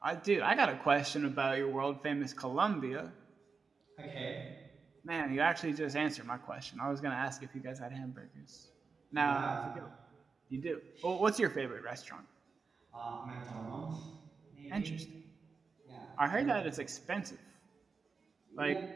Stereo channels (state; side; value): quieter; left; 4.9 dB